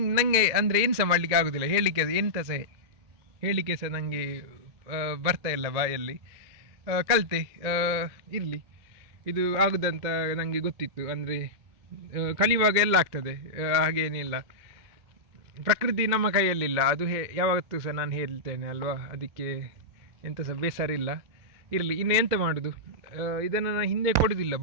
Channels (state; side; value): late; left; 2.1 ms